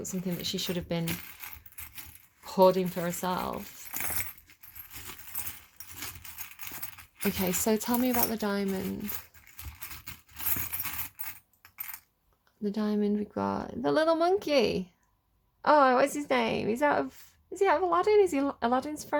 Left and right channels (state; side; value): identical; both; correlation 1.00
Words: something that she should have been hoarding for herself. Okay, so tell me about the diamond. The diamond, we've got the little monkey. Oh, what's his name? Is he out of Aladdin? Is he Aladdin's